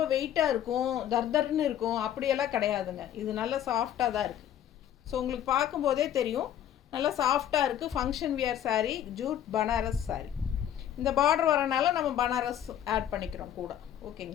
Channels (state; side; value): quieter; right; 10.7 dB